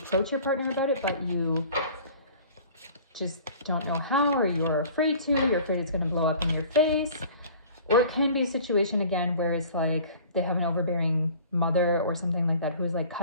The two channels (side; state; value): both; inverted; correlation -0.46